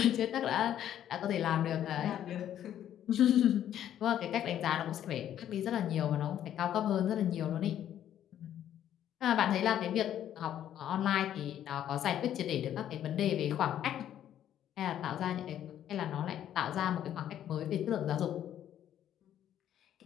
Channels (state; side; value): quieter; right; 10.9 dB